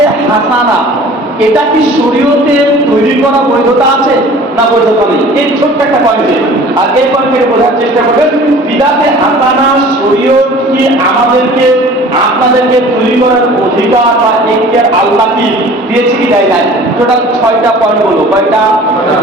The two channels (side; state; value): both; normal; correlation 0.46